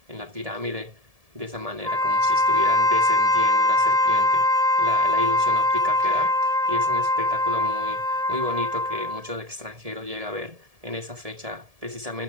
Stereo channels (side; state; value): left; late; 1.7 ms